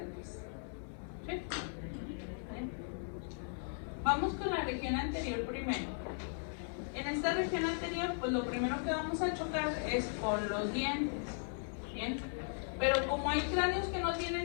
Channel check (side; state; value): right; silent; 53 dB below the other